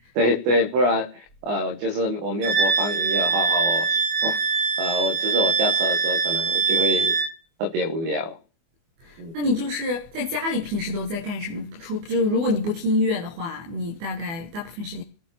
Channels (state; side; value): late; left; 24 ms